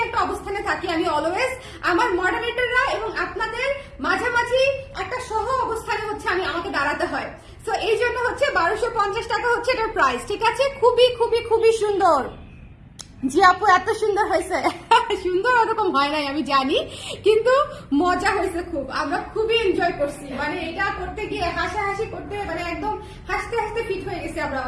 একটা অবস্থানে থাকি আমি অলওয়েজ। আমার মডারেটররা এবং আপনাদের মাঝামাঝি একটা সহ অবস্থানে হচ্ছে আমাকে দাঁড়াতে হয়। সো এই জন্য হচ্ছে 1250 টাকা হচ্ছে এটার প্রাইস, ঠিক আছে? খুবই সুন্দর। জি আপু এত সুন্দর হয়েছে। সুন্দর ওরকম হয় নাই আমি জানি, কিন্তু মজা হয়েছে খুব, আমরা খুবই এনজয় করছি। মানে এটা করতে গিয়ে হাসাহাসি করতে, মানে একদম হাসতে হাসতে ফিট হয়ে গেছে আমরা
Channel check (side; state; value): both; identical; correlation 1.00